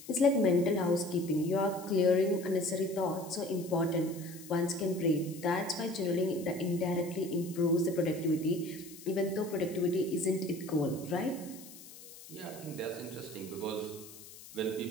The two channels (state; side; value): noise; left; hiss, 17 dB below the sound